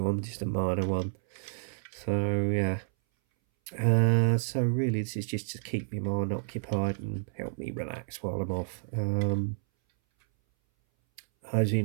one, just a minor one. So yeah. So really this is just to keep my mind occupied and help me relax while I'm off. As you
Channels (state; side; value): silent; left; 58 dB below the other